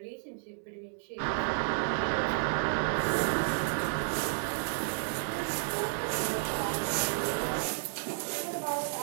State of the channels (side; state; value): left; silent; digital silence